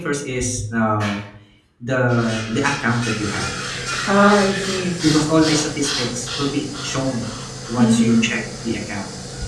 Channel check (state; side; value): identical; both; correlation 1.00